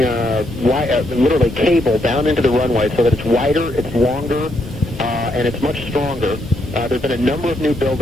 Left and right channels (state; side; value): normal; both; correlation 0.76